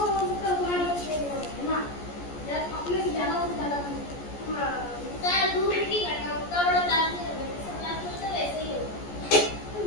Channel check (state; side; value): late; right; 14 ms